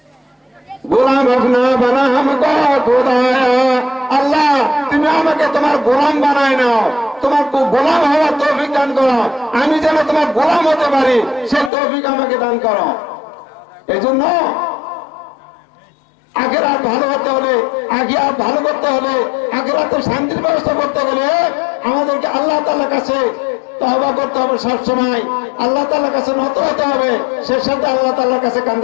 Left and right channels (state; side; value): drops out; right; at 11.7 s